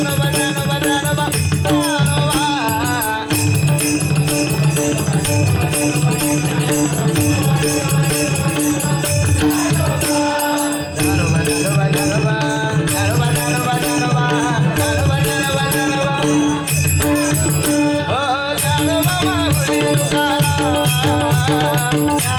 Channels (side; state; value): both; identical; correlation 1.00